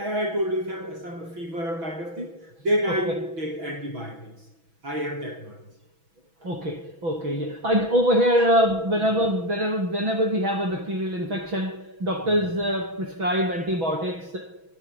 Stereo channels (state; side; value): late; left; 6.1 ms